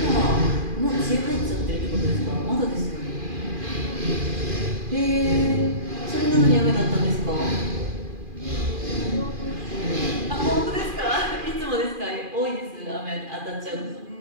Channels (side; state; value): left; late; 2.4 ms